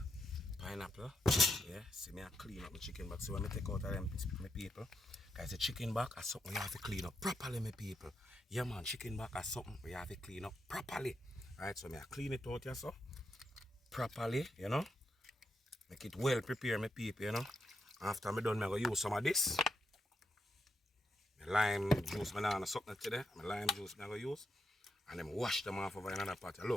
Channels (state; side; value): normal; both; correlation 0.83